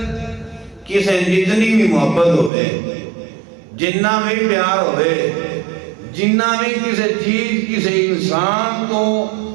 کسے جتنی بھی محبت ہوئے جنہ بھی پیار ہوئے جنہ بھی کسے چیز کسے انسان کو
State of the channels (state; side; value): drops out; left; at 2.5 s